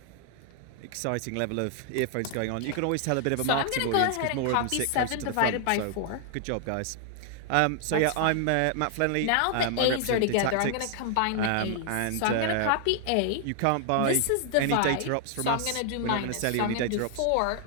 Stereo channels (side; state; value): both; different; correlation 0.00